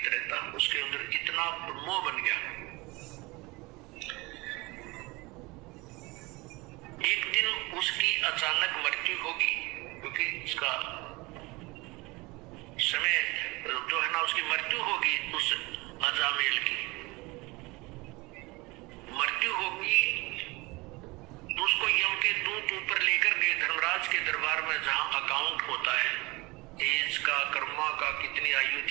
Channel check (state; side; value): quieter; left; 23.7 dB